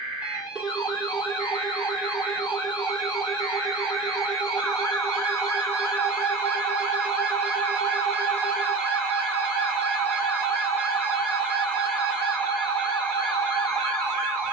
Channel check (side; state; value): left; quieter; 3.5 dB